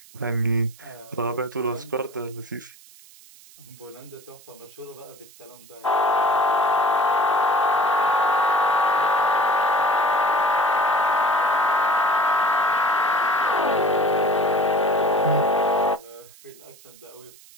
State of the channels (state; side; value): noise; right; hiss, 23 dB below the sound